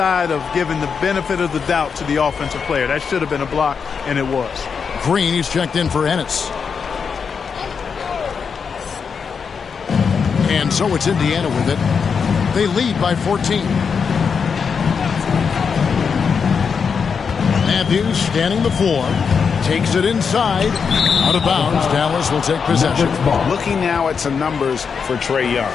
of giving the benefit of the doubt to the offensive player. That should have been a block, and it was. Green, he's checked in for Ennis. And so it's Indiana with it. They lead by 14. Matthews standing the floor. Takes it inside. Out of bounds. Dallas will take possession. Looking now at some numbers for Trae Young.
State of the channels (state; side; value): quieter; right; 6.0 dB